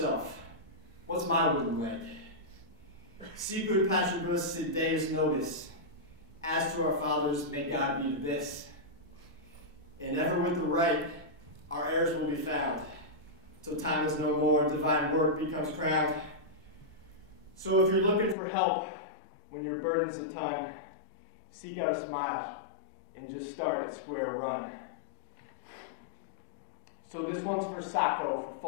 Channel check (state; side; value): drops out; right; at 18.4 s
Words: what's my wooden leg? Sicut patribus sit Deus nobis. As to our fathers, may God be this. And ever with the right, our heirs will be found. Till time is no more, divine work becomes crowned. So if you're looking for help when your burden's a ton, seek out a smile and just start at square run. So this one's for Sacco, for